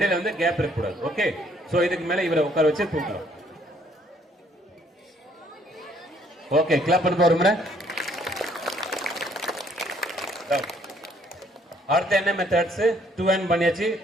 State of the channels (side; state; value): both; normal; correlation 0.64